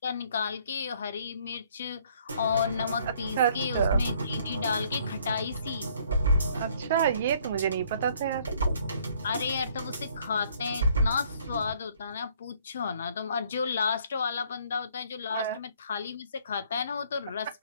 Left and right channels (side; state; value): both; inverted; correlation -0.63